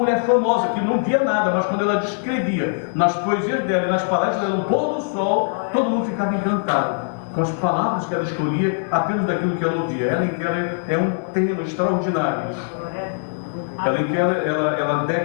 famosa que não via nada, mas quando ela descrevia nas poesias dela e nas palestras dela, no pôr do sol, todo mundo ficava encantado com as palavras que ela escolhia, apenas daquilo que ela ouvia. Helen Keller é um tema extraordinário. Helen Keller, ela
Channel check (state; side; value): silent; right; 65 dB below the other